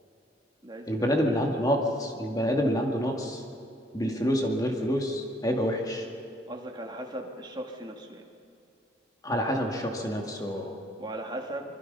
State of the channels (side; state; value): both; normal; correlation 0.64